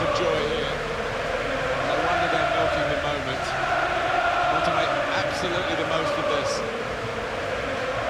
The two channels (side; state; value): both; identical; correlation 1.00